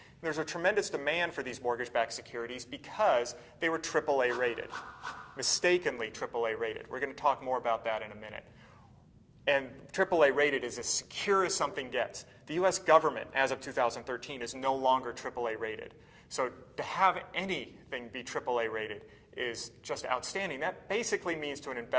There's a tremendous demand for these mortgage-backed securities because they were AAA rated, mistakenly AAA rated. We're going to talk more about that in a minute. And AAA rated is as secure as something gets. The U.S. government, as of 2013, is no longer AAA rated. So to have anything be AAA rated is just outstanding. That basically means to an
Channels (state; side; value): identical; both; correlation 1.00